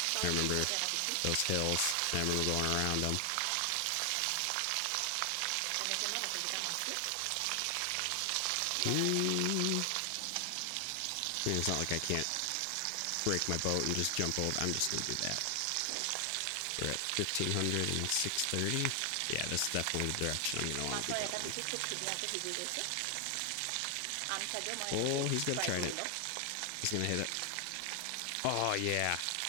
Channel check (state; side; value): different; both; correlation 0.00